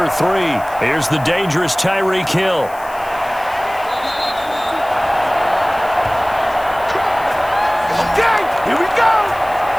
3? Here's the dangerous Tyreek Hill. Okay, here we go.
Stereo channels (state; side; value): noise; left; hiss, 21 dB below the sound